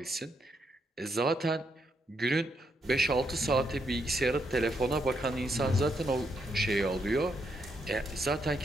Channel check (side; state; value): both; normal; correlation 0.78